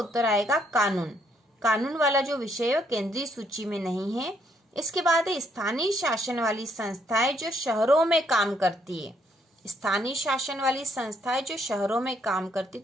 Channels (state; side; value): normal; both; correlation 0.70